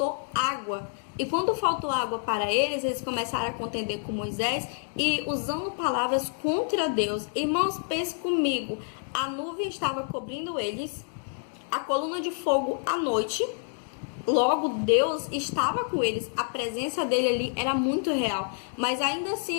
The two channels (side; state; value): right; silent; 59 dB below the other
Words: água. E quando faltou água para eles, eles começaram a contender com Moisés e usando palavras contra Deus. Irmãos, pense comigo, a nuvem estava cobrindo eles, a coluna de fogo à noite. Logo, Deus estava com eles, a presença dele ali era muito real. Mas ainda